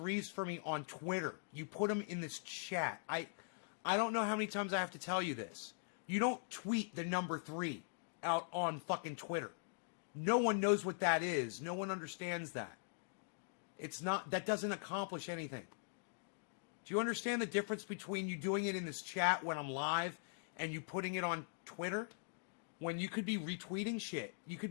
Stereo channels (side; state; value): right; silent; digital silence